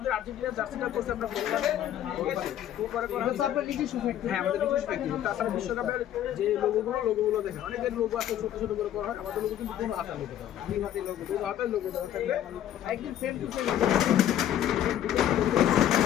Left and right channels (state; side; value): quieter; right; 11.3 dB